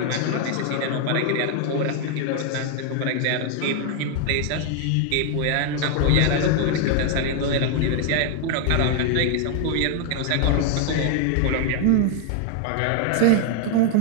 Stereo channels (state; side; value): different; both; correlation 0.00